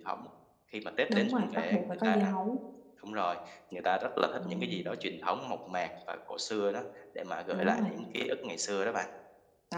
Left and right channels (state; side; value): identical; both; correlation 1.00